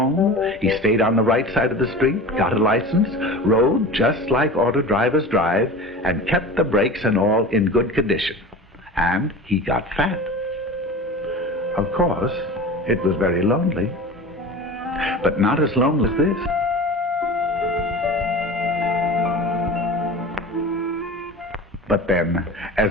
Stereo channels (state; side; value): normal; both; correlation 0.34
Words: he stayed on the right side of the street, got a license, rode just like auto drivers drive, and kept the brakes and all in good condition. And he got fat. Of course, it was very lonely, but not as lonely as this. But then,